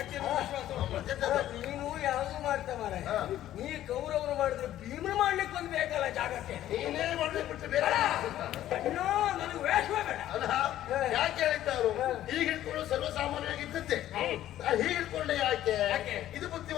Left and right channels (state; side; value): quieter; right; 12.9 dB